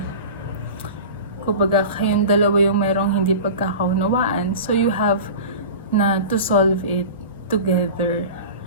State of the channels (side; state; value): both; inverted; correlation -0.33